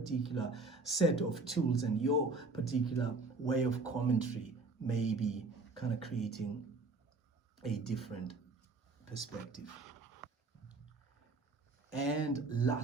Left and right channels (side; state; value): left; quieter; 3.5 dB